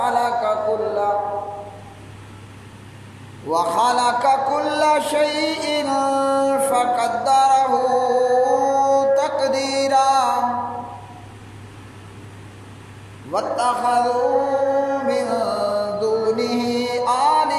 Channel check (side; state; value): both; identical; correlation 1.00